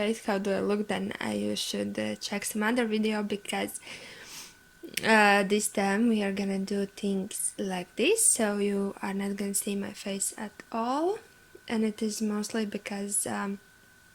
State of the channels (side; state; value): both; identical; correlation 1.00